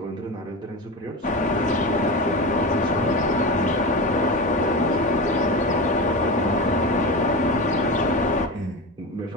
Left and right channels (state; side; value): normal; both; correlation 0.24